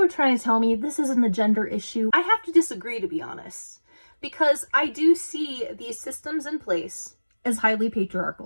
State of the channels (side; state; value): both; inverted; correlation -1.00